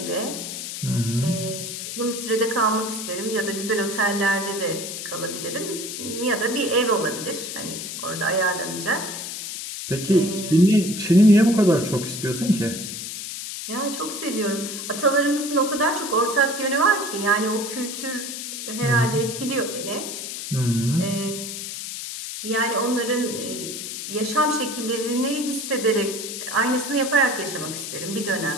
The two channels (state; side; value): noise; left; hiss, 7 dB below the sound